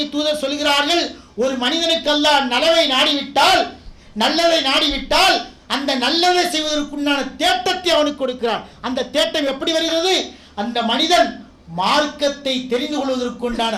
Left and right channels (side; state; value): both; identical; correlation 1.00